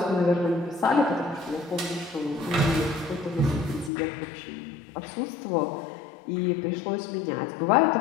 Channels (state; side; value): drops out; right; at 3.9 s